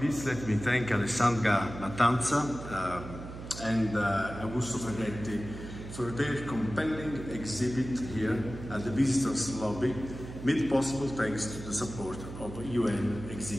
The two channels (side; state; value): right; noise; hum, 11 dB below the sound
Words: least, let me thank Alessandra Mattanza and Augusto Ferretti for their compelling exhibit here at the Visitors Lobby, made possible thanks to the support of the UN